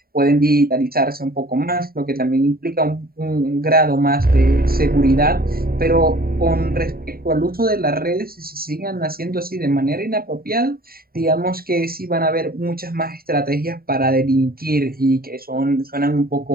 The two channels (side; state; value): left; late; 0.43 ms